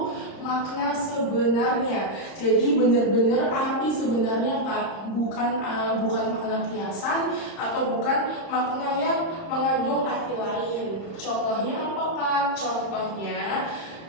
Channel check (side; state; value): right; late; 30 ms